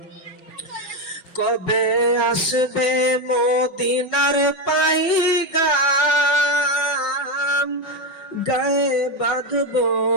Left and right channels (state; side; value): late; right; 5.5 ms